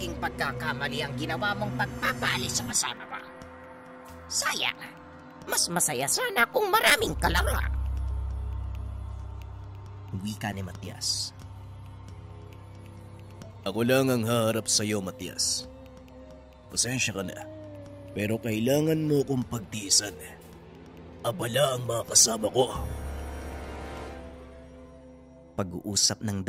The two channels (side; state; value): both; identical; correlation 1.00